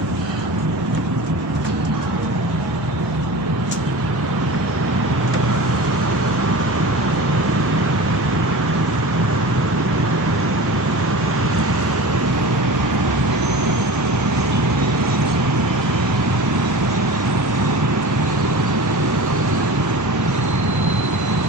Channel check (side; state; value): both; normal; correlation 0.34